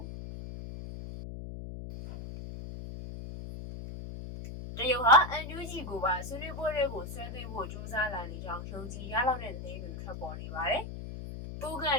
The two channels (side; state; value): left; noise; hum, 9 dB below the sound